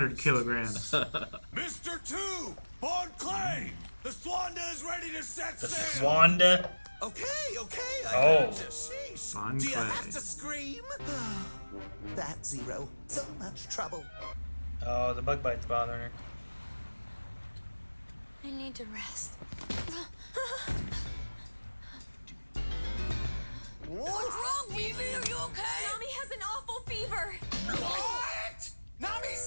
kilograms. Mr. 2, Bon Clay! The Swanda is ready to set The sail! Swanda. Okay, I Oh. got you. Sheesh. Fun Do you play. have to scream? That Zero. So much trouble. Oh, the bug bite's bothering her. I need to rest. What's wrong, Vivi? Are you okay? Nami has an awful fever. What? Nami's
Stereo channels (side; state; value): both; inverted; correlation -1.00